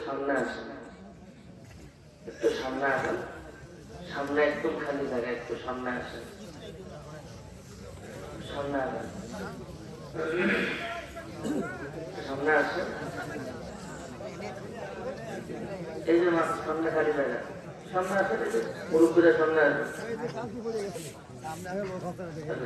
সামনে আসেন, একটু সামনে আসেন, সামনে একদম খালি জায়গা, একটু সামনে আসেন, সামনে আসেন, সামনে আসেন। এই যে সামনে খালি জায়গা, সামনে আসেন, মুরব্বীরা সামনে আসেন।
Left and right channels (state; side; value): identical; both; correlation 1.00